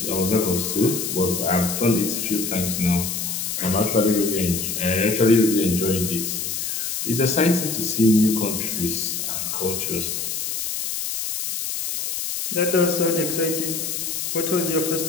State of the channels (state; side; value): noise; left; hiss, 3 dB below the sound